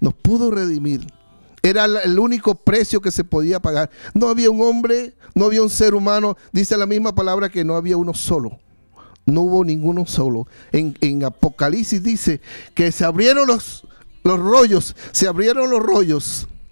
nos pudo redimir. Era el único precio que se podía pagar. No había un hombre, no había un ser humano. Dice la misma palabra que no había uno solo. No hubo ninguno solo. En Apocalipsis dice que se abrieron los rollos. Se abrieron los rollos.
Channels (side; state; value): both; inverted; correlation -1.00